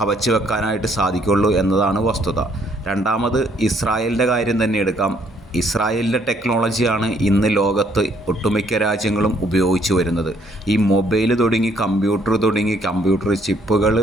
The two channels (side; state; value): both; normal; correlation 0.67